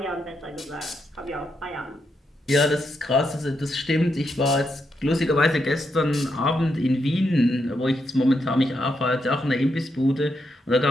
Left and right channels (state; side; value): normal; both; correlation 0.81